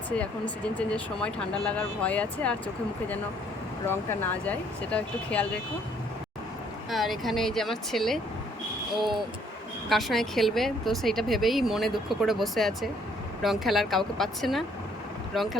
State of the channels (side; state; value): both; normal; correlation 0.64